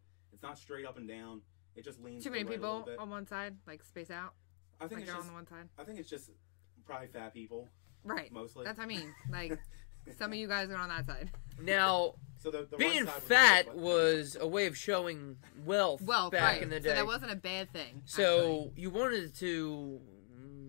it's not straight up and down. It just leans too to the many right a little people bit. on one side, like space out. I think like it's on the one side. I think it's just probably fat people. Right. Mostly. That's what I mean. Like, some of you guys are on that side. Now, so the being right fat was a way of showing wealth back right. in the day. So that wasn't a bad thing. So actually. You wanted to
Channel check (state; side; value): silent; right; 52 dB below the other